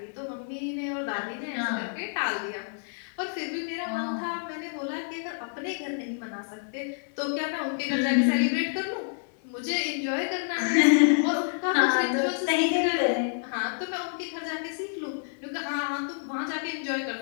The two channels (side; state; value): right; silent; digital silence